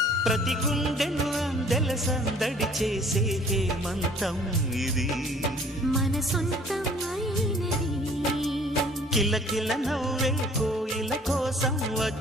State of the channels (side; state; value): both; normal; correlation 0.54